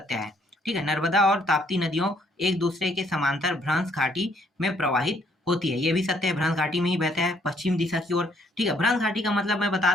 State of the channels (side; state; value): both; normal; correlation 0.67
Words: है। ठीक है, नर्मदा और ताप्ती नदियों एक दूसरे के समांतर भ्रंश घाटी में प्रवाहित होती है, ये भी सत्य है, भ्रंश घाटी में ही बहता है पश्चिम दिशा की ओर। ठीक है, भ्रंश घाटी का मतलब मैं बता